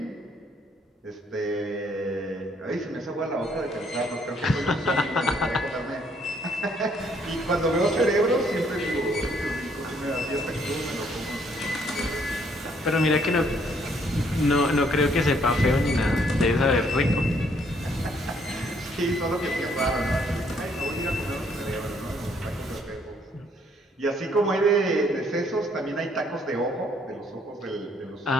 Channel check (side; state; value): both; normal; correlation 0.66